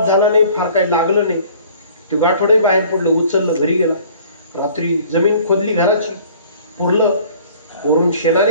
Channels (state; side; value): inverted; both; correlation -0.52